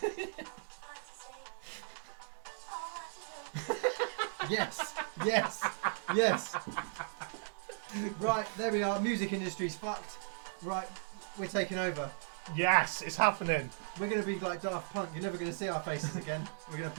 what to say or what to do. Yes. Right, there we are. Music industry's fucked. Right, we're taking over. Yes, it's happening. We're going to be like Daft Punk. You're never going to see our faces again. We're going to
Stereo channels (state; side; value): silent; left; digital silence